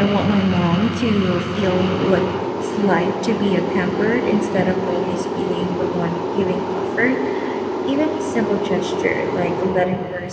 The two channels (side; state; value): both; identical; correlation 1.00